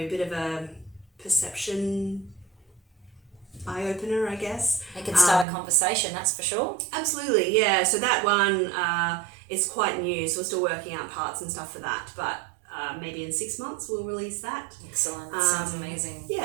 a perception eye-opener, I guess. It can start a conversation, that's for sure. Absolutely, yeah. So that one is quite new, so we're still working out parts and stuff for that, but maybe in 6 months we'll release that. Excellent. That sounds amazing.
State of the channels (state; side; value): drops out; left; at 5.5 s